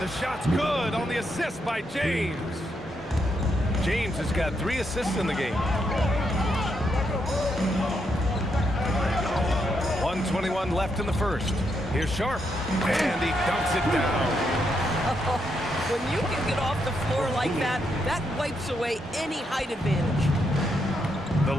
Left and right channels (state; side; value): normal; both; correlation 0.80